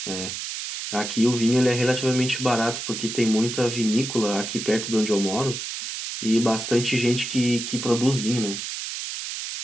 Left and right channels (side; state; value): right; noise; hiss, 6 dB below the sound